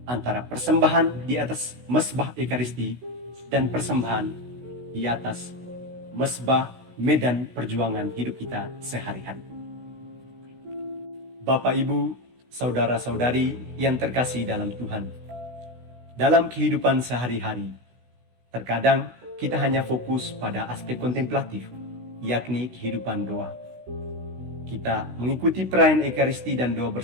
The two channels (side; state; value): left; late; 16 ms